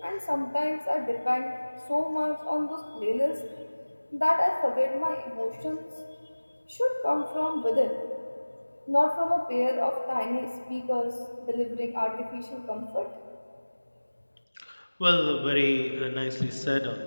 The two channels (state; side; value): inverted; both; correlation -1.00